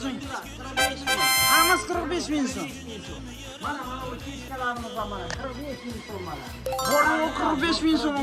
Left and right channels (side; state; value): both; identical; correlation 1.00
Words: Hammasi 45 ming so'm. Mana bu kishkalarimiz ham mana 45 ming so'm mana. Bor yo'q 45 ming so'm